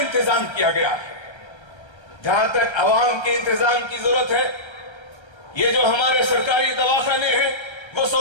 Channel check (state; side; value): late; right; 1.3 ms